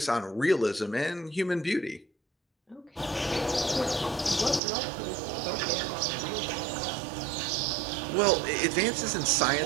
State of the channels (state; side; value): drops out; left; at 4.6 s